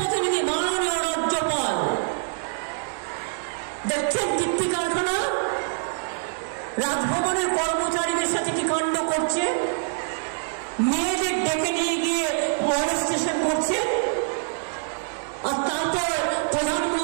মাননীয় রাজ্যপাল দেখছেন কীর্তি কারখানা, রাজভবনের কর্মচারীদের সাথে কি কাণ্ড করছে, মেয়েদের ডেকে নিয়ে গিয়ে মনস্টেশন করছে, আর তারপর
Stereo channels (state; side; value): silent; left; 62 dB below the other